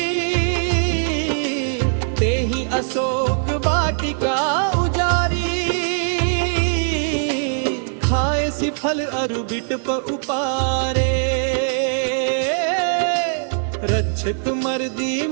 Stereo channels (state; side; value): silent; left; digital silence